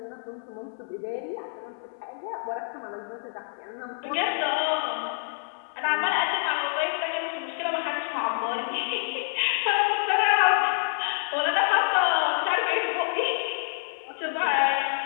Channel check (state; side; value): silent; right; digital silence